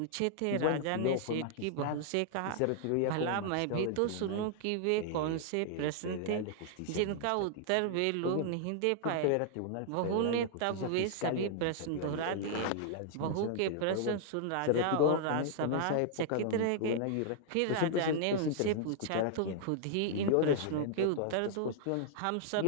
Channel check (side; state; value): both; different; correlation -0.01